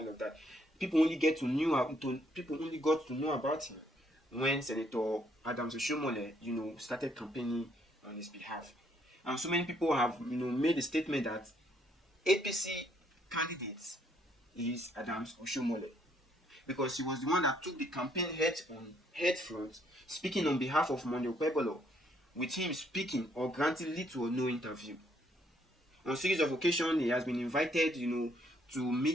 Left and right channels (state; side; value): normal; both; correlation 0.69